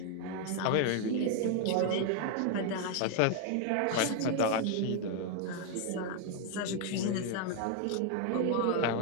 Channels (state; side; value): different; both; correlation 0.01